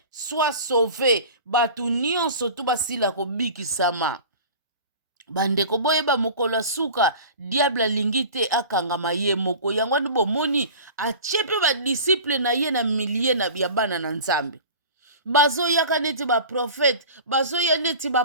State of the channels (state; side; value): inverted; both; correlation -0.38